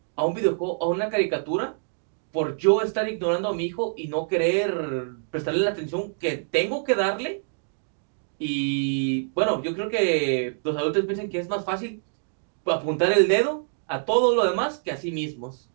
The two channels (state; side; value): silent; left; digital silence